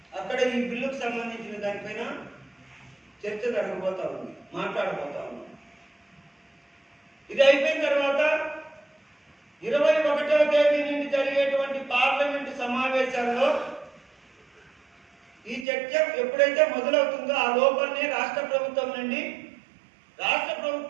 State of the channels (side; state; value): left; drops out; at 15.7 s